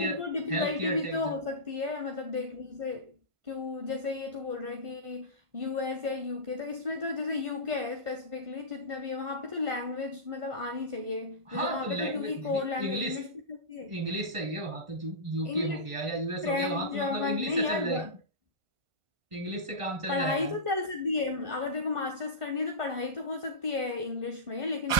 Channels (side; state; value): left; late; 1.5 ms